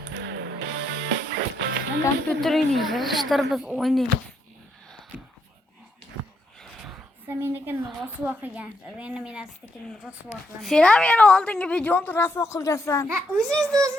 Kompüterini yığıştırıp biz oynayalım. Sen meniki rasuvo qilgansiz. Endi men astakini rasuvo qilaman. Sen ham yana oldingi videoni rasuvo qilgansan. Ha,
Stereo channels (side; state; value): both; normal; correlation 0.77